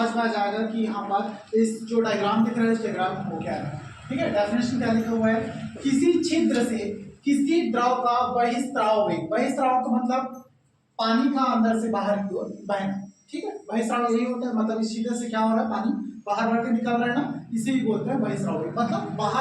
में आ जाएगा कि यहाँ पर इस जो डायग्राम दिख रहा है इस डायग्राम को क्या है। ठीक है, डेफिनेशन क्या लिखा हुआ है, किसी छिद्र से किसी द्रव का बहिस्राव वेग, बहिस्राव का मतलब पानी का अंदर से बाहर की ओर बहना। ठीक है, बहिस्राव यही होता है, मतलब इस छिद्र से क्या हो रहा है, पानी बाहर बढ़ के निकल रहा है ना, इसे ही बोलते हैं बहिस्राव वेग। मतलब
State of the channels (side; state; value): both; identical; correlation 1.00